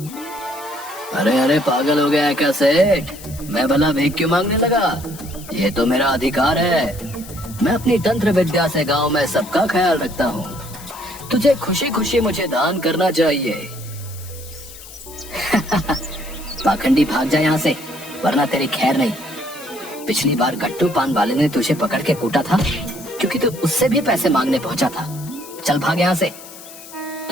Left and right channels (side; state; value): left; noise; hiss, 16 dB below the sound